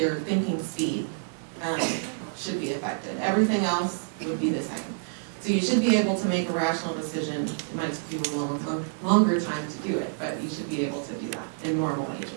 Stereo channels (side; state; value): left; silent; digital silence